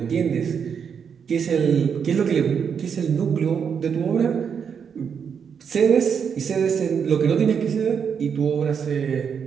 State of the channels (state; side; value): quieter; left; 7.0 dB